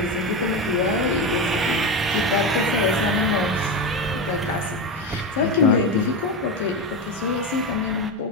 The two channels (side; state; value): both; normal; correlation 0.17